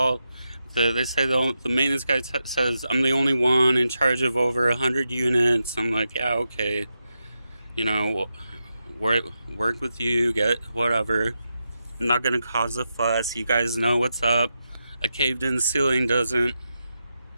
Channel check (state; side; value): inverted; both; correlation -0.87